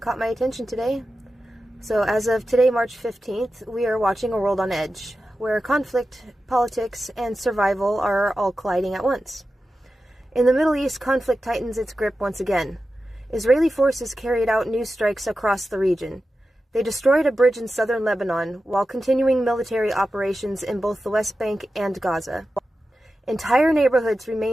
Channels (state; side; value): normal; both; correlation 0.92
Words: my attention today. So, as of today, March 15th, we are watching a world on edge, where conflict, politics, and survival are all colliding at once. In the Middle East, conflict tightens its grip once again. Israeli forces carried out new strikes across the region. They destroyed a bridge in southern Lebanon, while continuing military operations in both the West Bank and Gaza. Entire neighborhoods